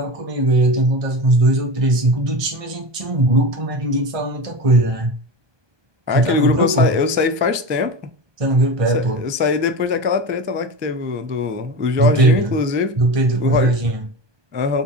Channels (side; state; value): left; late; 1.2 ms